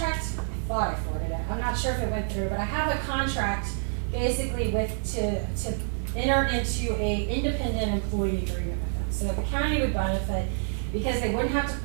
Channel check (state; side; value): silent; left; digital silence